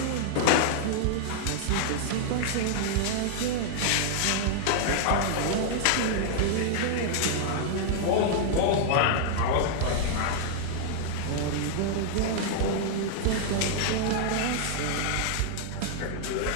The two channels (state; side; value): different; both; correlation -0.01